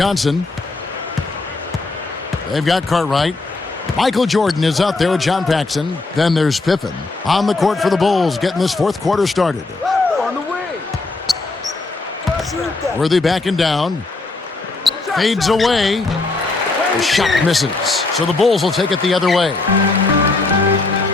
They've got Cartwright. Michael Jordan is out there with John Paxson. Then there's Pippen on the court for the Bulls, getting this fourth quarter started. On the way. Worthy backing down. Fades away. The shot misses. So the Bulls will take it the other way.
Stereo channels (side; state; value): right; quieter; 3.4 dB